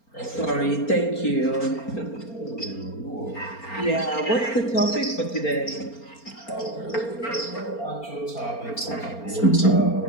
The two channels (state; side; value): late; right; 4.3 ms